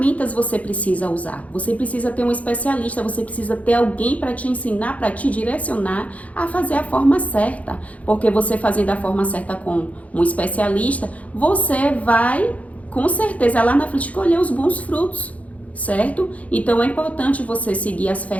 você precisa usar? Você precisa ter um especialista, você precisa ter alguém para te ensinar, para te direcionar a fazer a forma certa. Porque você fazendo a forma certa com um especialista, você vai, com certeza, lá na frente colher os bons frutos, certo? Então é importante você seguir as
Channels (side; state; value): right; late; 0.068 ms